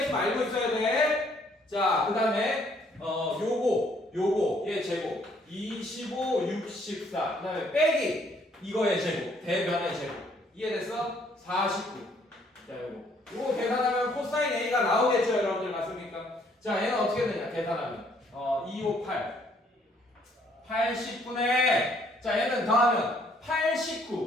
알고 있어야 돼. 자, 그 다음에 요거 얘 제곱 25 64. 그 다음에 빼기 이거의 제곱, 대변의 제곱. 이해됐어? 49. 자, 요거 계산하면 코사인 A가 나오겠죠, 여러분들. 맞습니까? 자, 얘는 어떻게 되냐? 계산하면 258 80분의, 자, 얘는 더하면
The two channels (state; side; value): normal; both; correlation 0.65